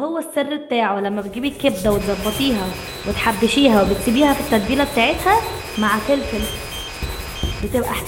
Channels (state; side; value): identical; both; correlation 1.00